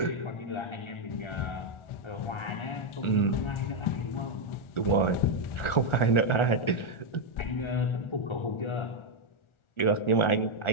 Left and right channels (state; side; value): late; right; 1.4 ms